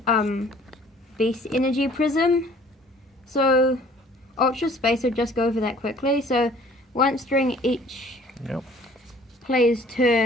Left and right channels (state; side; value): normal; both; correlation 0.54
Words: Beast Energy Prism. So Ultra Space, I'll just go over that quickly. So once during each Yep. player's